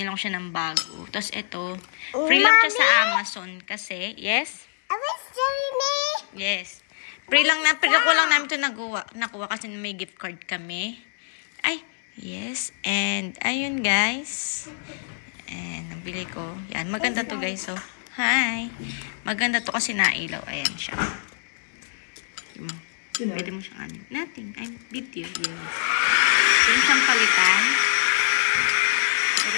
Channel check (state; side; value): silent; right; 59 dB below the other